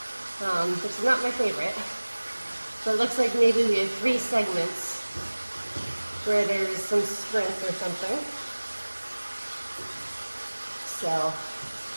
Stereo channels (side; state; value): both; inverted; correlation -1.00